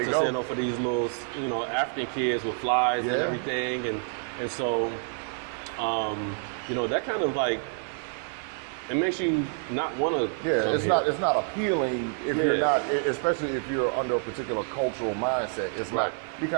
to send over for these little, African kids with flies and everything. And so, that kind of like, it makes you not want to. Yeah, it's not appealing if you're not, especially if you're under a particular cultural mindset. It's like you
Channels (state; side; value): silent; left; 55 dB below the other